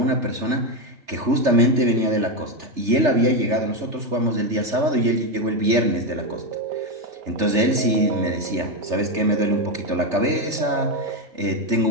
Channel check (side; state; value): left; late; 3.4 ms